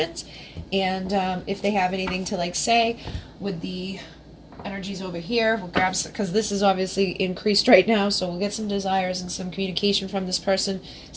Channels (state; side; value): identical; both; correlation 1.00